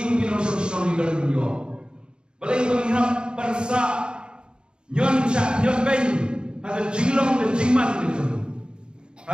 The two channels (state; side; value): late; left; 0.051 ms